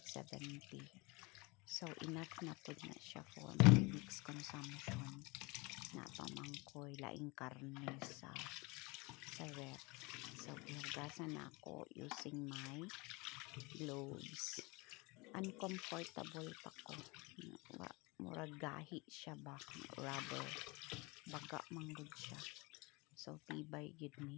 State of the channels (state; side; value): quieter; right; 26.1 dB